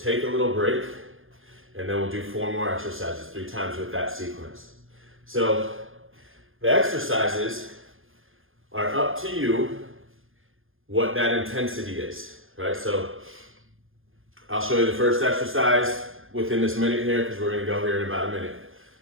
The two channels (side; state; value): left; late; 0.59 ms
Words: a little break, and then we'll do 4 more exercises 3 times with that sequence. So the exercises are up to you what that intensity is, right? So I'll show you the first exercise within this minute here because we're going to go here in about a minute.